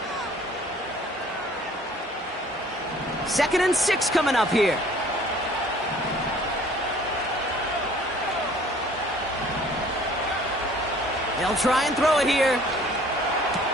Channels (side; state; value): both; normal; correlation 0.53